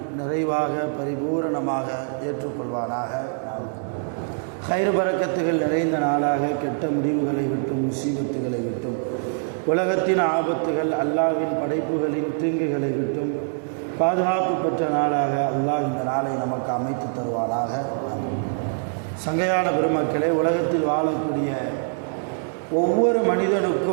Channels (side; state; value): left; silent; digital silence